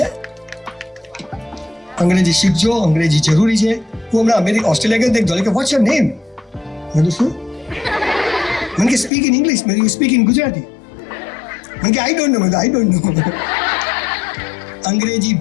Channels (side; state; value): right; drops out; at 9.1 s